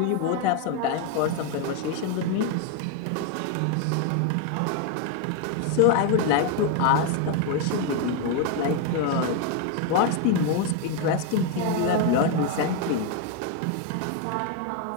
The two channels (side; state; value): both; different; correlation 0.01